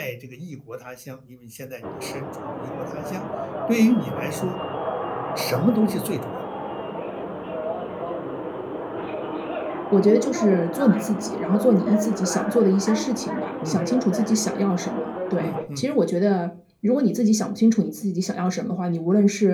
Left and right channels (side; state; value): both; identical; correlation 1.00